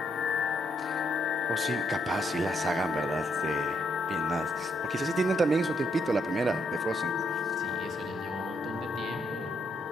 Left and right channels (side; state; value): both; normal; correlation 0.75